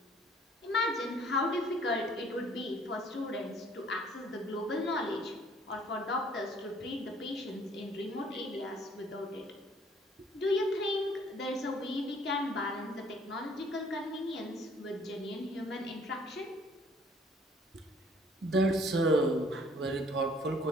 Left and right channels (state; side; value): normal; both; correlation 0.59